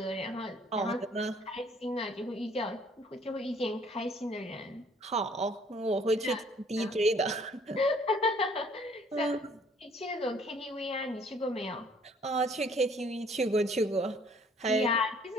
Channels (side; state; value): both; normal; correlation 0.59